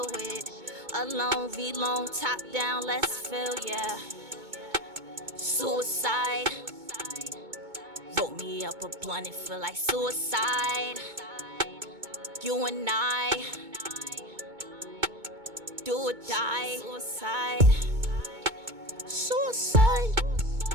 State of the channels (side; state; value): left; late; 2.2 ms